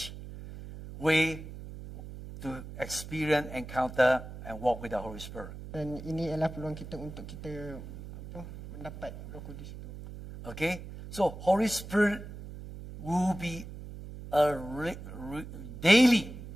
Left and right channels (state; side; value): noise; right; hum, 12 dB below the sound